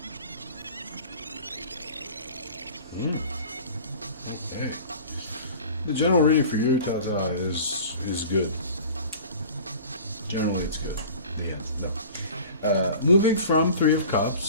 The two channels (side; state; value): both; inverted; correlation -0.42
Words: Okay. The general reading for you, Tata, is good. Generally, it's good. The end. No. Moving from Three of